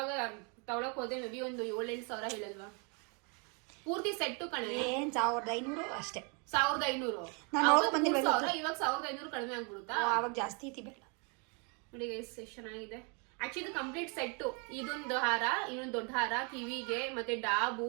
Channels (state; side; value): quieter; left; 35.0 dB